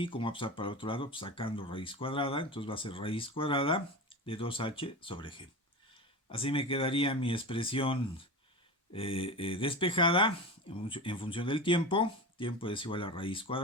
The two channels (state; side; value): normal; both; correlation 0.27